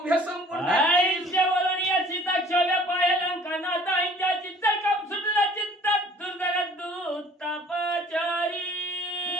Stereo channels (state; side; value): normal; both; correlation 0.52